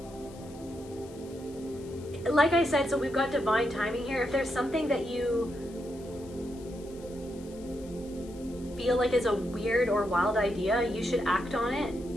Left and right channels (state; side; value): noise; left; hiss, 23 dB below the sound